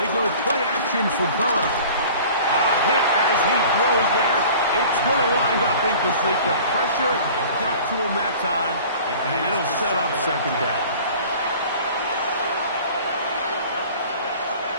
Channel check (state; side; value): inverted; both; correlation -0.44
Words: go play action for Burrow. A hit as he throws there. It's going to wind up incomplete. The pressure got to him that time, and it'll set up 2nd down.